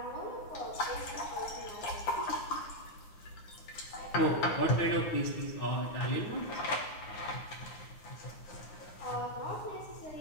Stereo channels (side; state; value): right; late; 9.7 ms